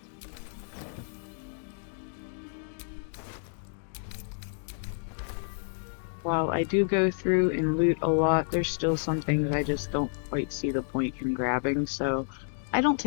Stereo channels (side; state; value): right; silent; digital silence